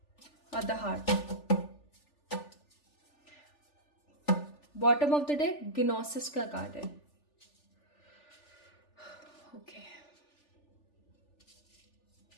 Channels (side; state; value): right; late; 3.4 ms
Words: और the heart. Bottom of the deck gnosis का कार्ड है। ओके,